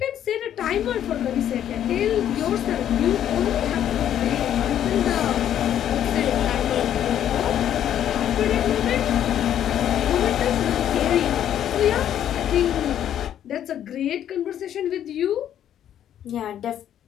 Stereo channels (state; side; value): quieter; right; 10.5 dB